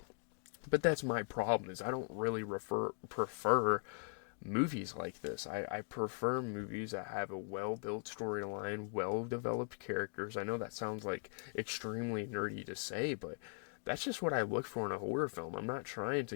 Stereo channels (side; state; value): right; silent; 51 dB below the other